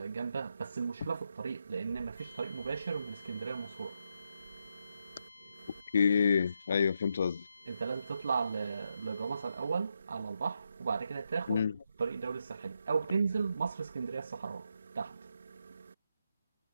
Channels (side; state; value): both; inverted; correlation -0.82